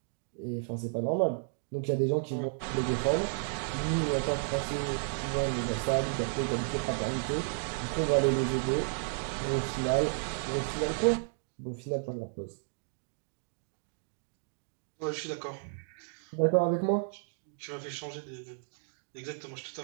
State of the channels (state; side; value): silent; left; digital silence